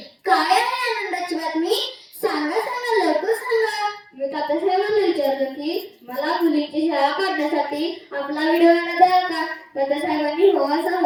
काय आहे आनंदाची बातमी? सांगा सांगा, लवकर सांगा. मी तात्यासाहेबांना विचारलं की मला मुलीची शाळा काढण्यासाठी आपला व्हिडिओ द्याल का? तात्यासाहेबांनी हो असा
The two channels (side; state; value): both; identical; correlation 1.00